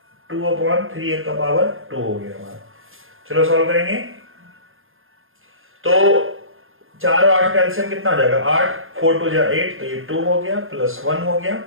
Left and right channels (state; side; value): late; left; 0.60 ms